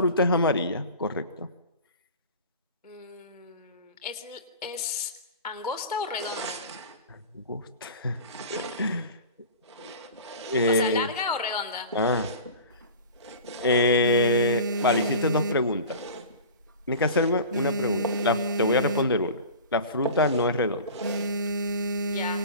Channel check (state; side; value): inverted; both; correlation -0.37